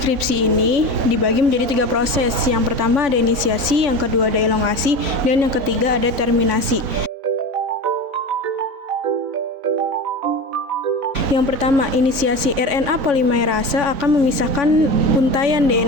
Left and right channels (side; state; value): left; late; 3.6 ms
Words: ini dibagi menjadi 3 proses. Yang pertama ada inisiasi, yang kedua ada elongasi, dan yang ketiga ada terminasi. Yang pertama, inisiasi RNA polimerase akan memisahkan untaian